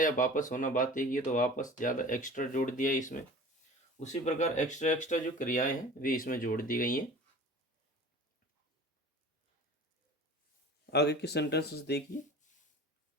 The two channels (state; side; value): normal; both; correlation 0.41